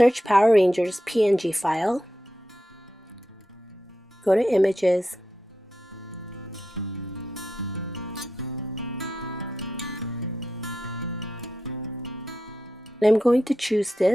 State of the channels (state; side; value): normal; both; correlation 0.87